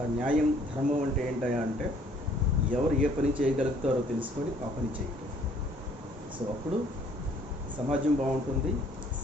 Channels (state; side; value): normal; both; correlation 0.60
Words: న్యాయం, ధర్మం అంటే ఏంటయా అంటే ఎవరు ఏ పని చేయగలుగుతారో తెలుసుకొని ఆ పని చేయటం. సో అప్పుడు సమాజం బాగుంటుంది,